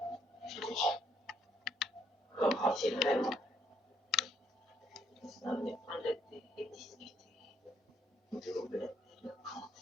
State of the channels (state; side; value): normal; both; correlation 0.70